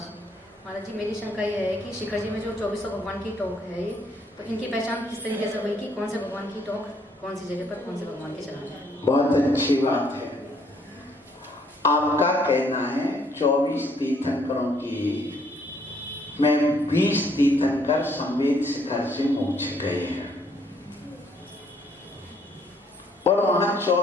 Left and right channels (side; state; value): both; normal; correlation 0.66